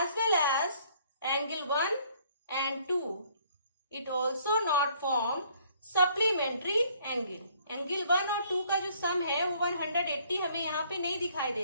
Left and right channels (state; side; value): inverted; both; correlation -0.62